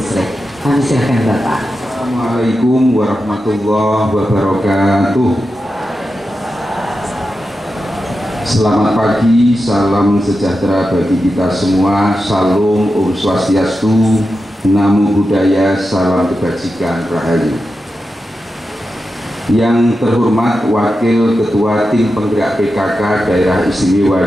Kami silakan Bapak. Assalamualaikum warahmatullahi wabarakatuh. Selamat pagi, salam sejahtera bagi kita semua. Salam Om Swastiastu, Namo Buddhaya, salam kebajikan rahayu. Yang terhormat Wakil Ketua Tim Penggerak PKK Daerah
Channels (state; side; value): normal; both; correlation 0.90